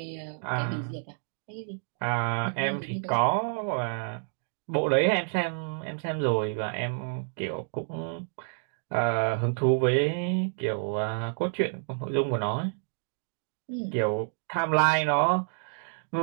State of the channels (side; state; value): left; silent; digital silence